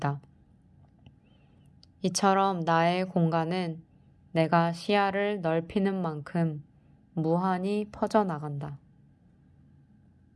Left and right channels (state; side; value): identical; both; correlation 1.00